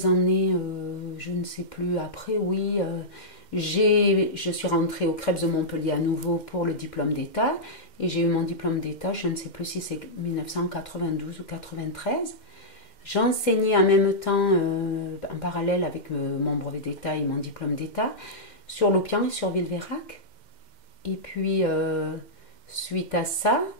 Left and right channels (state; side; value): late; right; 2.1 ms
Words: années, je ne sais plus, après, oui. Je suis rentrée au CREPS de Montpellier à nouveau pour le diplôme d'état et j'ai eu mon diplôme d'état, je ne sais plus si c'est 1992 ou 93. J'enseignais en même temps, en parallèle avec mon brevet d'état et mon diplôme d'état, sur Loupian et sur Villeveyrac. Et puis, suite à ça,